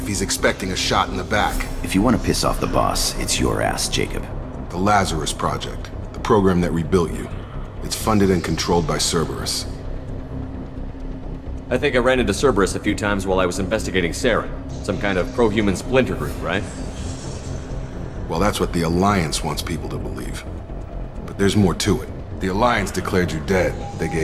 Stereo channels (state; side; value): identical; both; correlation 1.00